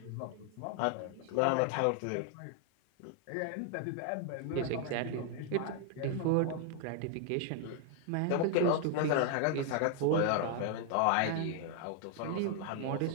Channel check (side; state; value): both; different; correlation 0.00